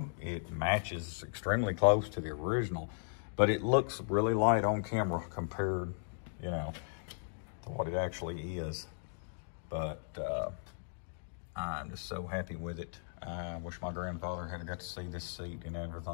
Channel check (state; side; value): silent; right; digital silence